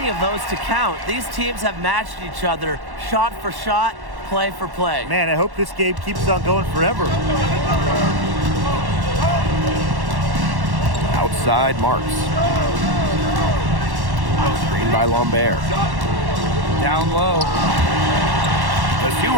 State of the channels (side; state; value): left; late; 1.1 ms